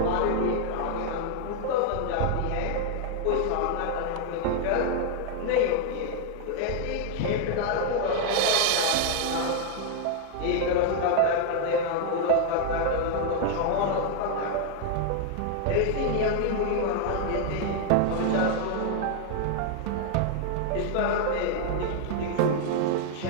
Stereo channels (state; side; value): different; both; correlation 0.00